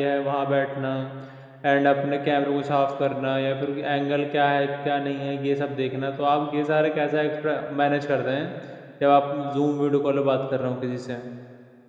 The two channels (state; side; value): identical; both; correlation 1.00